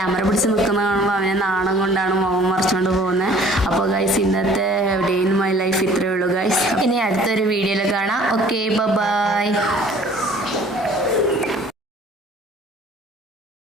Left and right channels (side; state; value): both; normal; correlation 0.52